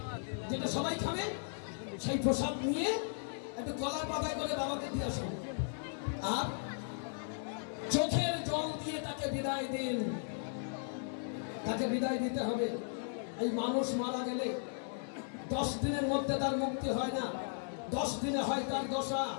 যেটা সবাই খাবে, সেই প্রসাদ নিয়ে একটু কলার পাতায় করে বাবাকে দিয়ে আসুন, আর চোখের জল দিয়ে তাকে বিদায় দিন। তাকে বিদায় দিতে হবে। এই মানুষ মারা গেলে 10 দিনের মধ্যে তার মুক্তি হয় না, 10 দিনে হয় তার দশা।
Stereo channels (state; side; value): silent; right; digital silence